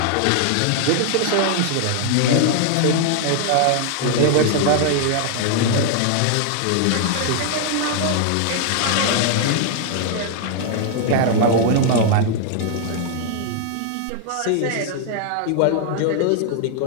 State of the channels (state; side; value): different; both; correlation 0.00